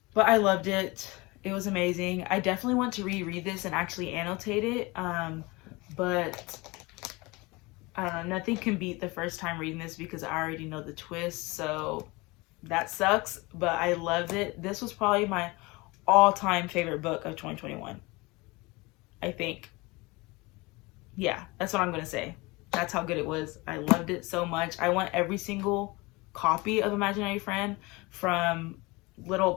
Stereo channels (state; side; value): quieter; right; 24.1 dB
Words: But I loved it. It was amazing. I definitely want to reread this and actually annotate it. But I don't know, nothing can beat the first time reading this because I already know the twist. So that sucks, but I loved it. This was probably my all-time favorite book of 2021. I think. Yeah, that's what I'm going to say. That's how good it was. I loved it so much. I want every single copy of Imaginary Friend, from little